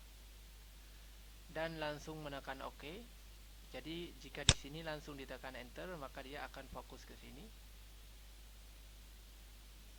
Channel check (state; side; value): identical; both; correlation 1.00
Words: dan langsung menekan OK. Jadi jika di sini langsung ditekan enter, maka dia akan fokus ke sini.